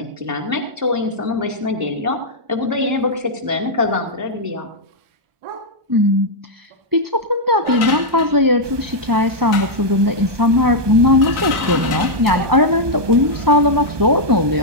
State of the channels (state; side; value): late; left; 1.2 ms